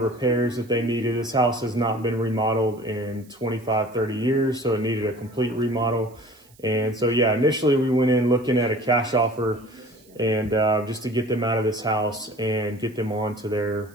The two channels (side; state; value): right; noise; hiss, 29 dB below the sound